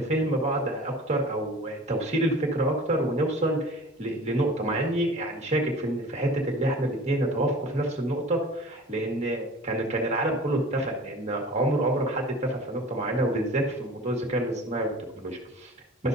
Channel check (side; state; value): both; normal; correlation 0.42